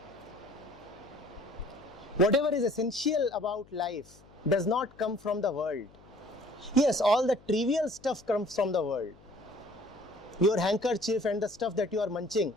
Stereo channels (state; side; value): noise; left; hum, 25 dB below the sound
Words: Whatever is essential about life does not come from the world. Yes, all the trivial stuff comes from the world. Your handkerchief and the stuff that you are munching